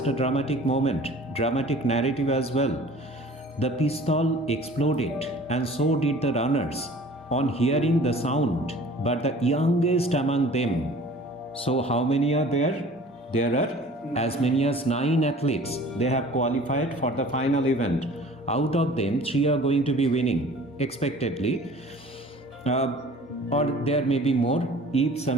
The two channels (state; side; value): normal; both; correlation 0.47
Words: a dramatic moment, dramatic narrative as well. The pistol exploded and so did the runners on hearing the sound, but the youngest among them. So how many are there? There are as many as 9 athletes. They have qualified for the final event. Out of them, 3 are going to be winning expectedly, or there may be more if